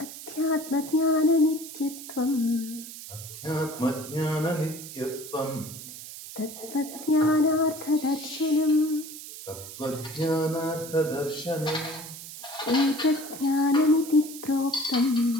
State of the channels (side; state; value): right; noise; hiss, 12 dB below the sound